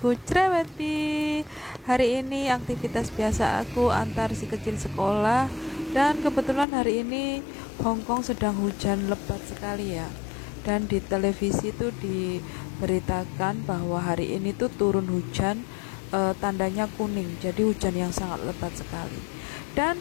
Cereweti. Hari ini aktivitas biasa aku antar si kecil sekolah. Dan kebetulan hari ini Hongkong sedang hujan lebat sekali ya. Dan di televisi itu diberitakan bahwa hari ini tuh turun hujan, tandanya kuning. Jadi hujan yang sangat lebat sekali. Dan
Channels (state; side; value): drops out; right; at 6.7 s